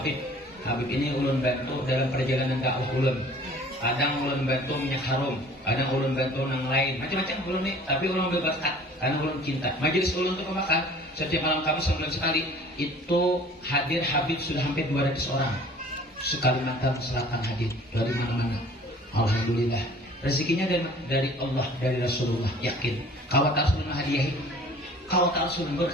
ini ulun bantu dalam perjalanan dakwah ulun. Kadang ulun bantu minyak harum, kadang ulun bantu nang lain, macam-macam ulun nih. Tapi ulun berberkat karena ulun cinta. Majelis ulun untuk pemakan setiap malam Kamis sebulan sekali itu hadir Habib sudah hampir 200 orang. Sekalimantan Selatan hadir dari mana-mana. Alhamdulillah. Rezekinya dari Allah, dari Rasulullah. Yakin. Kawat Rasulullah hadiahi. Kawat Rasulullah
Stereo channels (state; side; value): normal; both; correlation 0.49